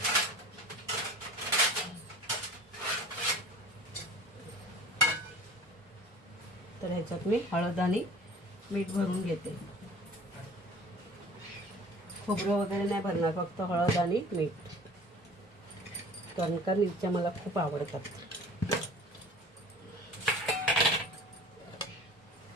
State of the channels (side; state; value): both; normal; correlation 0.44